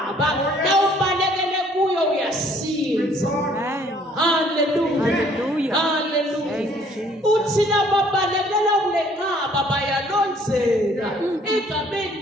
nawubalekele kuyo uyasinza. Hallelujah. Hallelujah. Hallelujah. Thank you, Jesus. Uthi lababalekela kulenqaba bayalonzeka egameni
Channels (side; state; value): both; normal; correlation 0.60